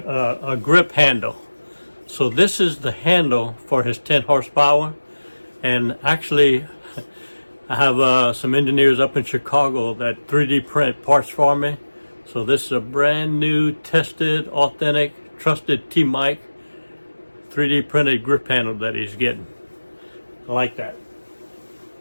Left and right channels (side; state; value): both; inverted; correlation -1.00